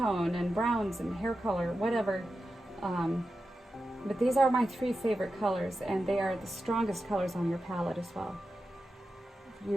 and browns and hair color, whatever. But these are my three favorite colors, and they are the strongest colors on your palette as well.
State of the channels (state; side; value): normal; both; correlation 0.91